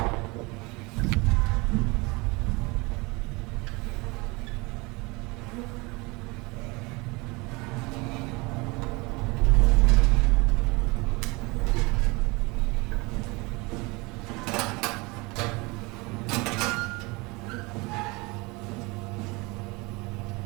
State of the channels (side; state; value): left; quieter; 25.6 dB